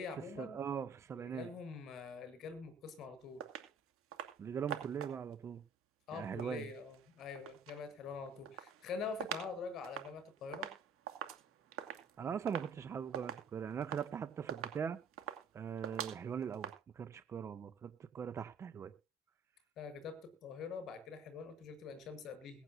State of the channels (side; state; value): left; quieter; 3.8 dB